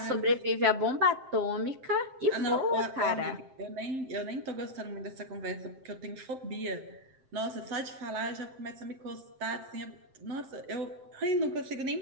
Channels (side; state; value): left; late; 7.7 ms